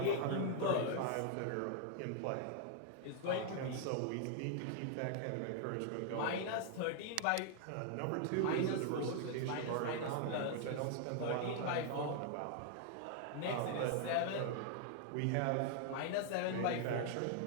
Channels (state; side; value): different; both; correlation 0.00